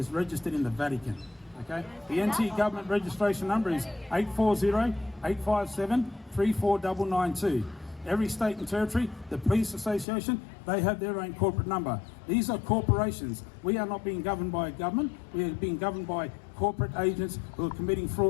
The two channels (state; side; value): drops out; right; at 10.1 s